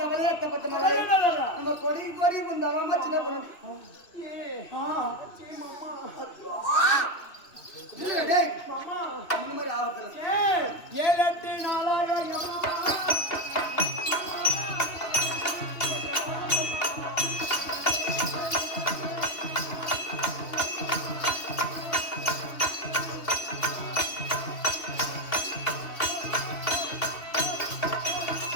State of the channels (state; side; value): late; right; 2.7 ms